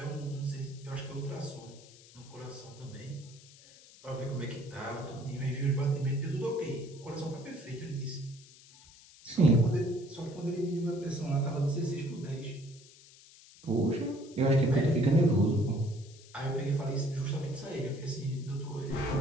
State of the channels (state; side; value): noise; left; hiss, 22 dB below the sound